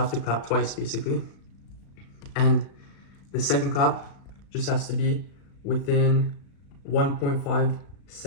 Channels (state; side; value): late; right; 36 ms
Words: to clap twice basically. And the second clap just has to be within 1.5